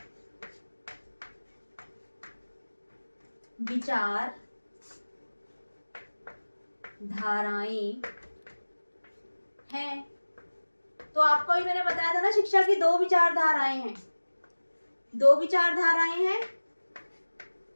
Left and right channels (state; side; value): inverted; both; correlation -1.00